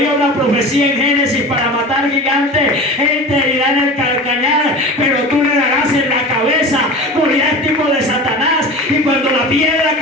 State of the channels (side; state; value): both; normal; correlation 0.34